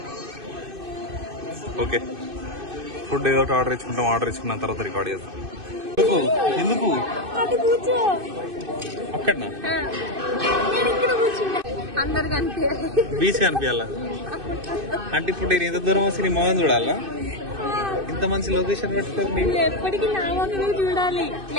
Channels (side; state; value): left; late; 2.6 ms